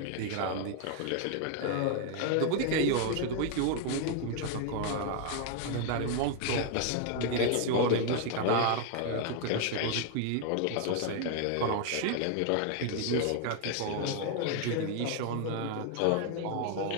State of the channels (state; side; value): different; both; correlation 0.00